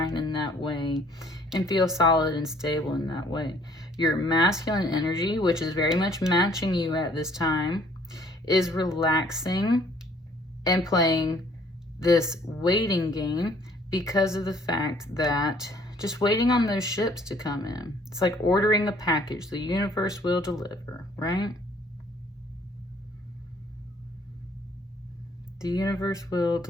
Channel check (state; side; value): normal; both; correlation 0.60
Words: in that way and feel solid and stable in that way. Your masculine energy, which is very much matching you at this time, is relaxing and playing this waiting game because of the fact that just waiting on those ships to come in. It's like ordering a package. The universe will deliver, right? The universe will